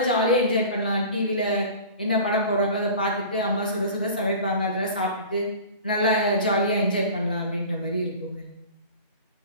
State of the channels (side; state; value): both; inverted; correlation -0.40